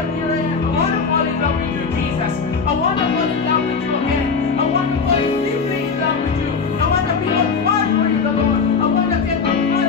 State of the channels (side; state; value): right; quieter; 5.3 dB